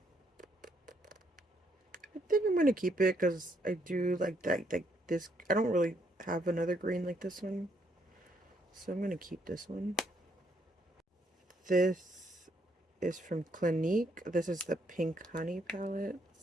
think I'm gonna keep it because I do like that. Like this, I don't really have another green like this one, so I'm gonna keep this one. This is from Clinique. This is the Pink Honey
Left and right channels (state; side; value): normal; both; correlation 0.72